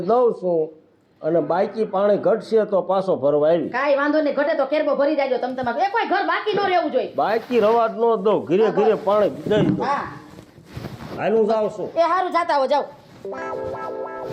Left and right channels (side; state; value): both; identical; correlation 1.00